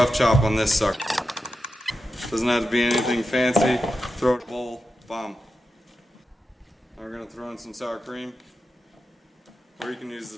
chop on this sucker. Doesn't have to be anything fancy. Throw it in a bowl, bomb. Now we're going to throw in some sour cream. Or you can use the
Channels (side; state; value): both; normal; correlation 0.89